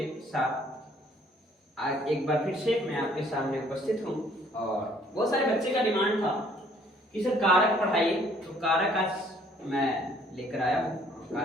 साथ आज एक बार फिर से मैं आपके सामने उपस्थित हूँ। और बहुत सारे बच्चे का डिमांड था कि सर कारक पढ़ाइए, तो कारक आज मैं लेकर आया हूँ।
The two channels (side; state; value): both; normal; correlation 0.60